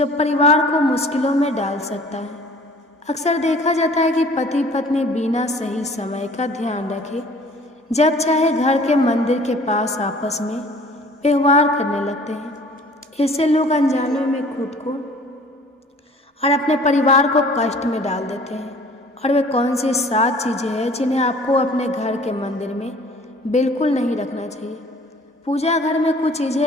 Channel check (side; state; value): both; normal; correlation 0.50